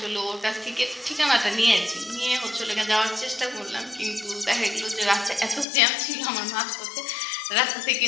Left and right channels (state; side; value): drops out; right; at 5.7 s